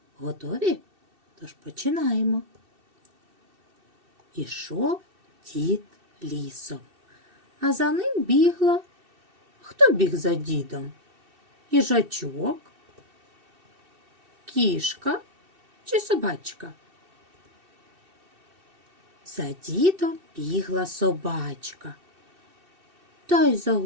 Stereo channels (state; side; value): late; left; 2.7 ms